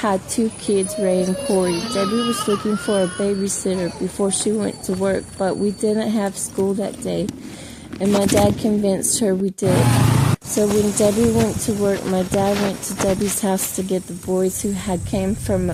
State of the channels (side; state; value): both; identical; correlation 1.00